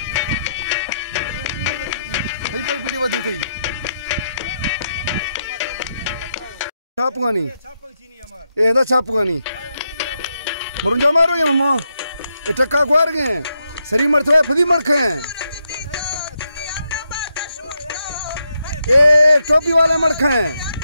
कोई पीटी बदी थी छापगानी ए दा छापगानी मरुंजा मारो ये मम्मा ए टक्का ग्वार गए सरी मरथवा फदी मरखे ए टोपी वाले मरखे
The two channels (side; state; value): both; inverted; correlation -0.82